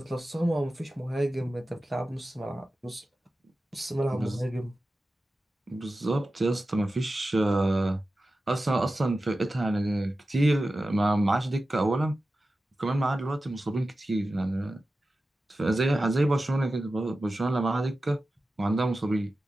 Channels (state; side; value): normal; both; correlation 0.94